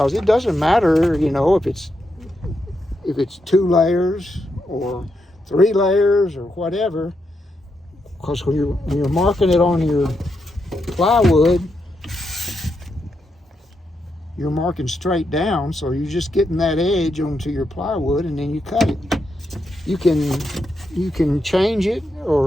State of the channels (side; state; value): both; normal; correlation 0.83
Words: it doesn't matter, you know, if it's 2 layers or 3 layers or whatever, because when you're marking it on your plywood, you're marking straight down, so you're just getting that edge onto your plywood, and then you cut it. You can change it